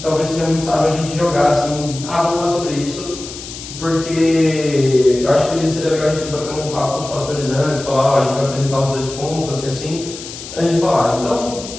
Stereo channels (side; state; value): left; noise; hiss, 12 dB below the sound